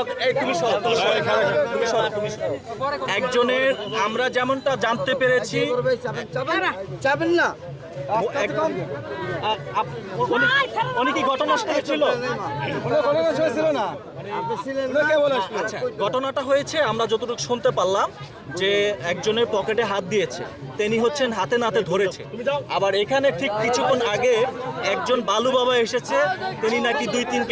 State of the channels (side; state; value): both; identical; correlation 1.00